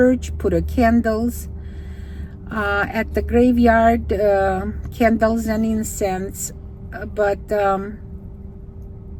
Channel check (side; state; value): both; identical; correlation 1.00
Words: put candles at the graveyard, candles and incense, but